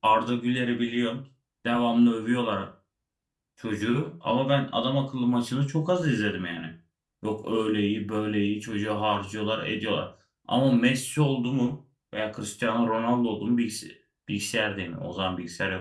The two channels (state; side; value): identical; both; correlation 1.00